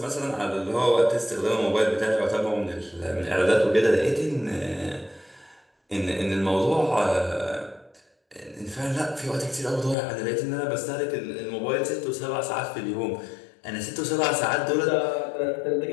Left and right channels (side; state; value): right; drops out; at 10.0 s